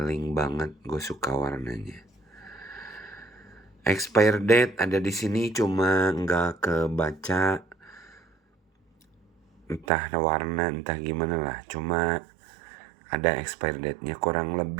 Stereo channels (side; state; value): left; drops out; at 9.9 s